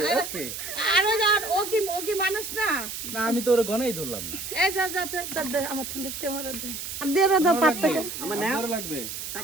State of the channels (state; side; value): noise; right; hiss, 7 dB below the sound